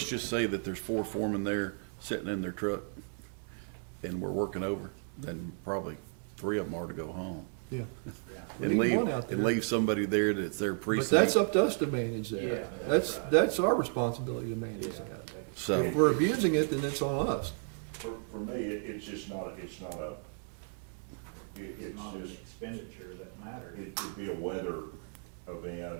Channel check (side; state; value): left; silent; 55 dB below the other